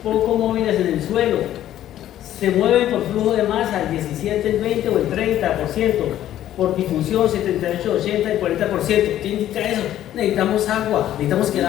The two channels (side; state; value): right; quieter; 12.3 dB